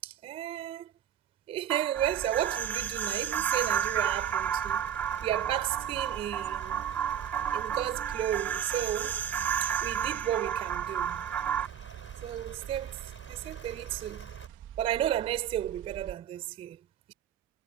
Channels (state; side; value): quieter; left; 9.7 dB